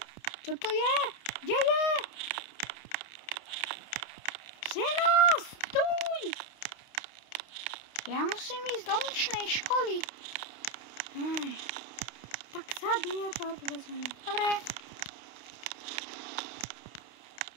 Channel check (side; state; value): right; late; 29 ms